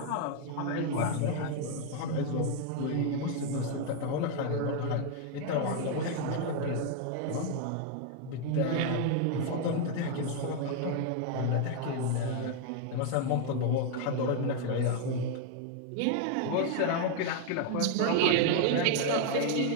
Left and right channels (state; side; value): different; both; correlation 0.01